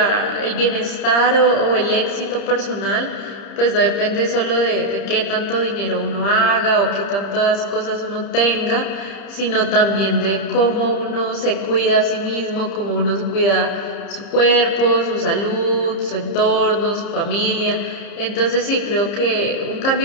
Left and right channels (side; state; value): right; late; 30 ms